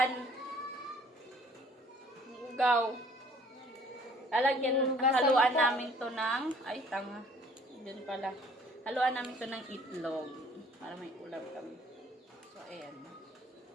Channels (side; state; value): both; normal; correlation 0.56